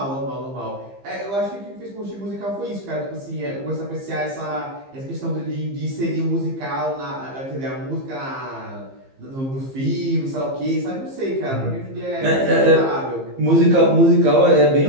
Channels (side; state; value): left; late; 15 ms